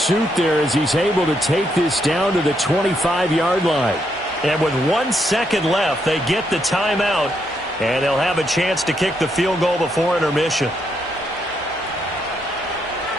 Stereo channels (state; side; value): normal; both; correlation 0.77